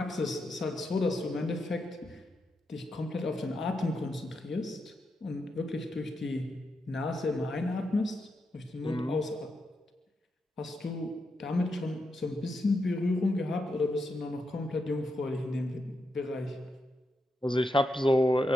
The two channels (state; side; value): normal; both; correlation 0.84